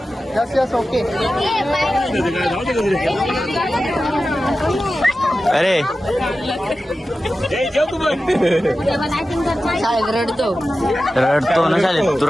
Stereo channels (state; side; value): normal; both; correlation 0.93